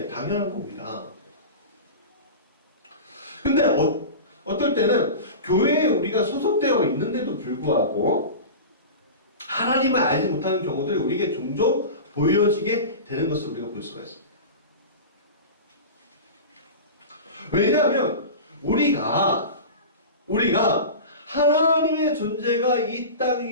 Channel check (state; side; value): inverted; both; correlation -0.30